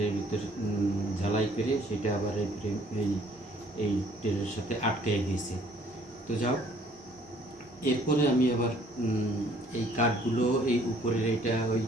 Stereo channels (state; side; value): normal; both; correlation 0.60